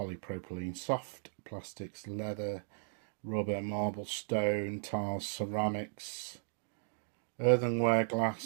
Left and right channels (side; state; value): left; silent; digital silence